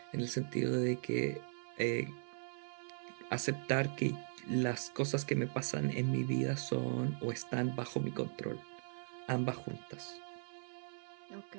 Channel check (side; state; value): left; silent; 52 dB below the other